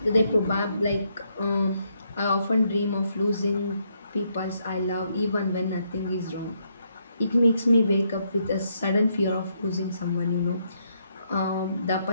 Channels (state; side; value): inverted; both; correlation -0.75